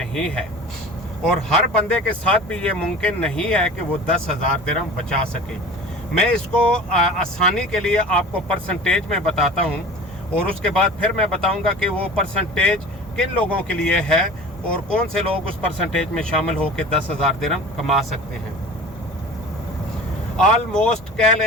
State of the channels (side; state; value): both; normal; correlation 0.38